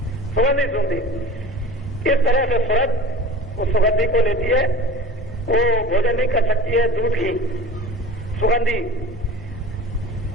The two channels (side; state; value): both; normal; correlation 0.38